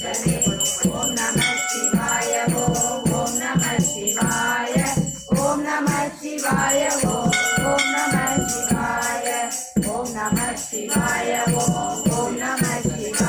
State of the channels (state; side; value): identical; both; correlation 1.00